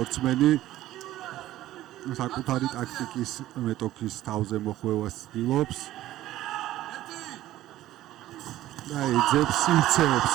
საკუთარი ტაქტიკის მეტოქის თავზე მოხვევას ცდილობს და ეძებს სივრცეებს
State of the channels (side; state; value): left; quieter; 14.5 dB